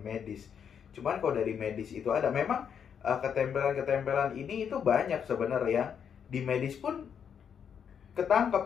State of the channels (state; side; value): quieter; right; 7.7 dB